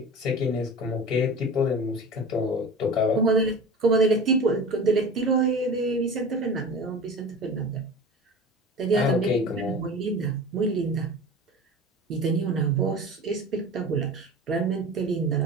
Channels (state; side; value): normal; both; correlation 0.35